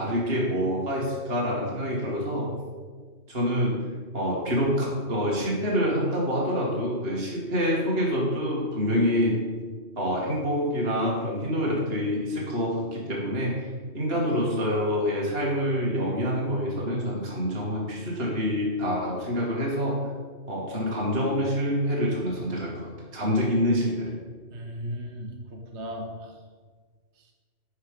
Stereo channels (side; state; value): left; late; 2.9 ms